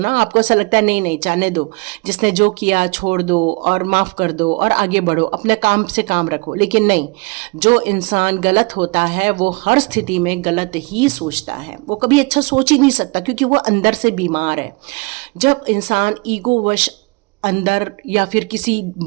आपको ऐसा लगता है नहीं नहीं जाने दो, जिसने जो किया छोड़ दो और माफ कर दो और आगे बढ़ो, अपने काम से काम रखो। लेकिन नहीं, जो इंसान गलत होता है वो हर स्थिति में गलत ही सोचता है, वो कभी अच्छा सोच ही नहीं सकता, क्योंकि वो अंदर से बीमार है। जब इंसान ईगोवश अंदर या फिर किसी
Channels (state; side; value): quieter; left; 28.1 dB